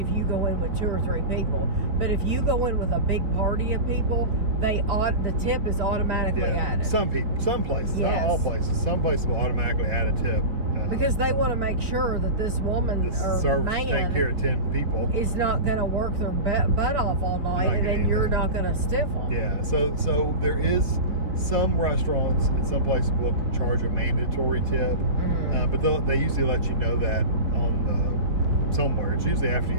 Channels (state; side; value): late; left; 4.1 ms